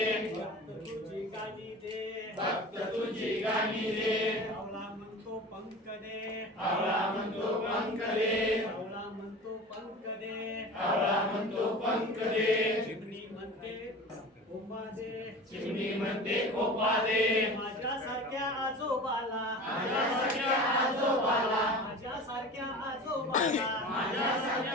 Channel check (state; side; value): normal; both; correlation 0.35